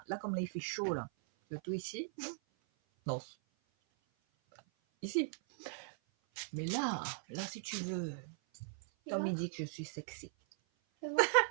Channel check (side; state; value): left; silent; 52 dB below the other